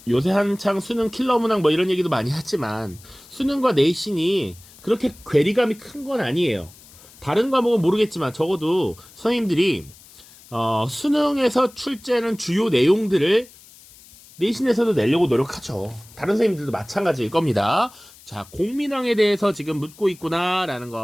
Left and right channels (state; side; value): noise; left; hiss, 23 dB below the sound